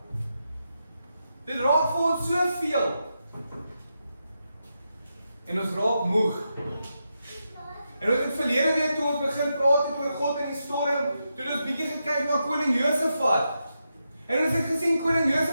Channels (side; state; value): both; inverted; correlation -0.86